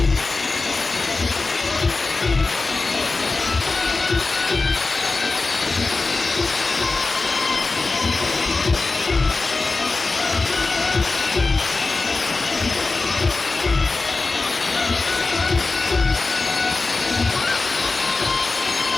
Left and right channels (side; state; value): right; quieter; 3.7 dB